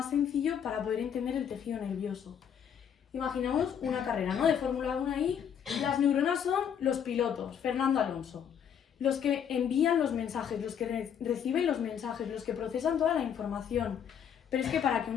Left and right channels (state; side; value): quieter; right; 8.3 dB